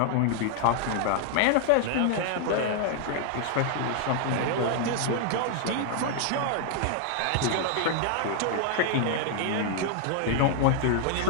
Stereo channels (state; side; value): different; both; correlation 0.00